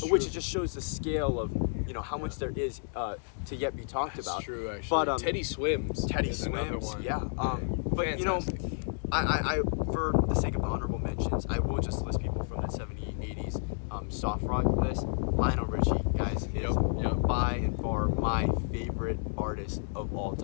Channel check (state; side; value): silent; right; digital silence